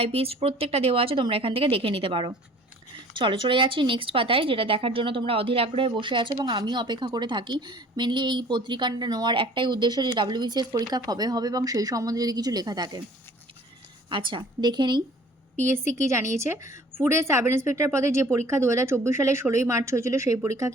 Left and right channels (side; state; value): both; normal; correlation 0.51